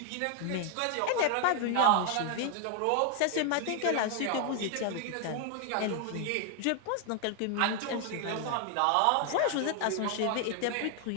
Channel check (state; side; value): different; both; correlation 0.00